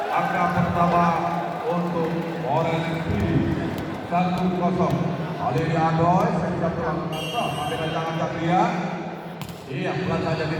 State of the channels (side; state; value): both; identical; correlation 1.00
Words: angka pertama untuk Orange City 1-0. Ali Adoy, saya pulang kantor, Abidal Ancang-Ancang dia. Iya, pelan saja